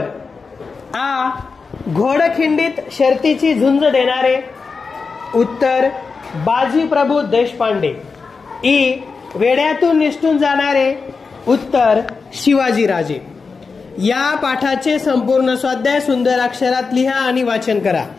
घोडखिंडीत शर्तीची झुंज देणारे. उत्तर बाजीप्रभू देशपांडे. ई वेड्यातून निसटून जाणारे. उत्तर शिवाजीराजे. या पाठाचे संपूर्ण स्वाध्याय सुंदर अक्षरात लिहा आणि वाचन करा.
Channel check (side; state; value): right; quieter; 4.8 dB